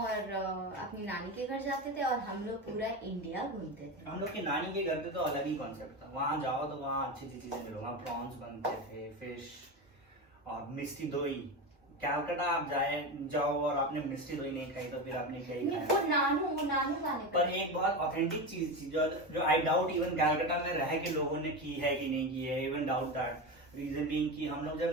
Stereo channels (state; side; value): normal; both; correlation 0.20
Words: अपनी नानी के घर जाते थे, और हम लोग पूरा इंडिया घूमते थे। हम लोग की नानी के घर पे तो अलग ही कॉन्सेप्ट था, वहाँ जाओ तो वहाँ अच्छी चीजें मिलो, वहाँ प्रॉन्स बनते थे, फिश और मिष्टी दोई। कैलकाटा आप जाओ और आपने मिष्टी दोई नहीं खाई तो फिर आपने क्या ही खाया। वो नानू गाने पर एक बहुत ऑथेंटिक चीज थी जो आई डाउट इवन कैलकाटा में रह के लोगों ने की है कि नहीं की है, even doubt that. Reason being कि हम लोग जब